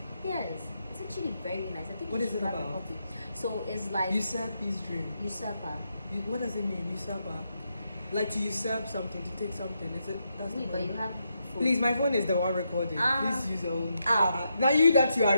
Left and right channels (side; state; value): both; inverted; correlation -0.82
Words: Yes, it's actually very nice. I think What you is should it grab a about? copy. So it's like Usurp his dream. usurper. What does it mean, usurper? Like to usurp something, to take something. Is it? That's the Wait, but point. you have. Phone. Please, my phone is the one recording. Ah. Please use your own. Ah. Now you that you are